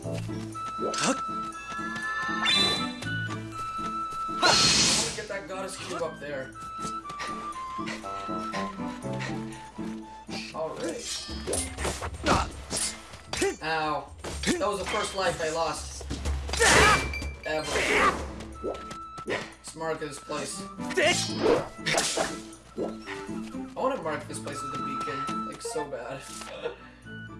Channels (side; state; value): both; identical; correlation 1.00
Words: That goddess cube up there. Alright. Ow. That was the first life I lost. Ever. Let's mark this place. I want to mark this place with a beacon. Like, so bad.